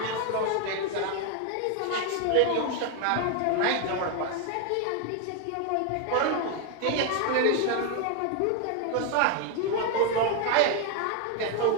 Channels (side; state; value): both; different; correlation 0.01